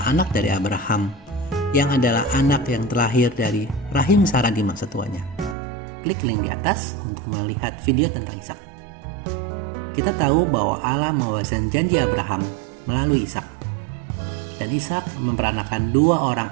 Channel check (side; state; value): left; drops out; at 5.6 s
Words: anak dari Abraham, yang adalah anak yang terlahir dari rahim Sarah di masa tuanya. Klik link di atas untuk melihat video tentang Ishak. Kita tahu bahwa Allah mewariskan janji Abraham melalui Ishak. Dan Ishak memperanakan dua orang